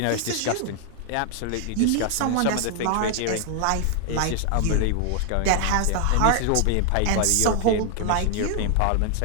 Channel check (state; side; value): different; both; correlation 0.00